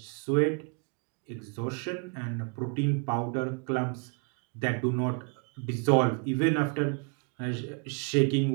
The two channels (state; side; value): quieter; left; 37.0 dB